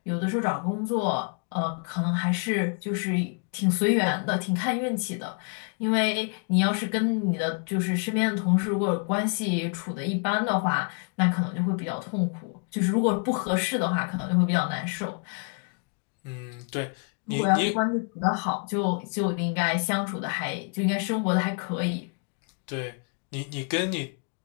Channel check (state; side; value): quieter; right; 39.8 dB